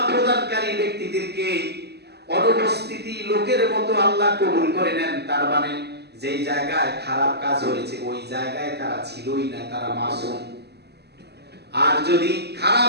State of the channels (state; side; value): late; left; 0.48 ms